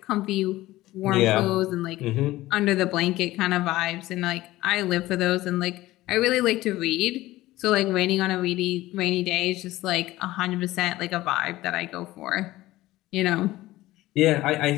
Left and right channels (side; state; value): right; quieter; 17.1 dB